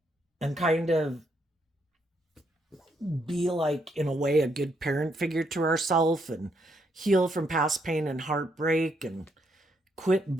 and kind of be like, in a way, a good parent figure to ourselves and heal from past pain and heartbreak and quit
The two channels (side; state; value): both; normal; correlation 0.75